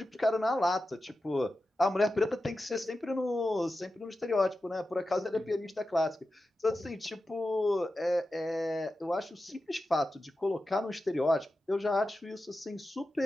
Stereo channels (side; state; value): both; normal; correlation 0.92